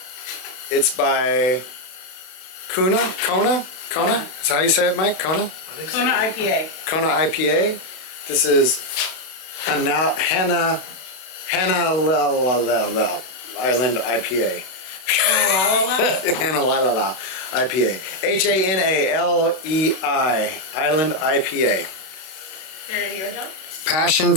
it's by Kona? Is that how you say it, Mike? Kona? Kona IPA. Kona IPA. This is Hanalei Island IPA. Hanalei IPA. Hanalei Island IPA. There you go, John. Passion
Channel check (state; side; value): late; right; 32 ms